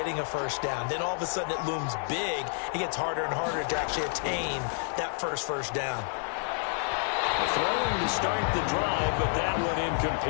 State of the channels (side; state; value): right; silent; 58 dB below the other